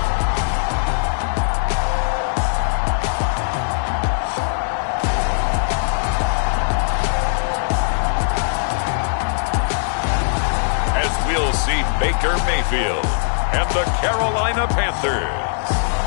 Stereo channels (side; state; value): right; silent; digital silence